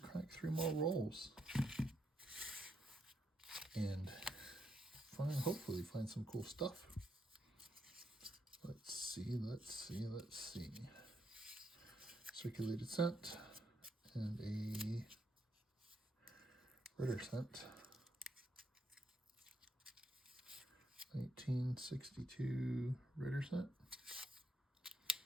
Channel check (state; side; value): normal; both; correlation 0.78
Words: 3 more rolls and hopefully find some cool stuff. Let's see. Circulated cent and a Ritter cent. 1962 Ritter cent.